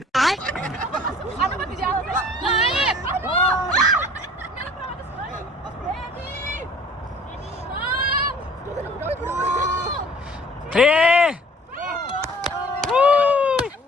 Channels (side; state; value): both; normal; correlation 0.50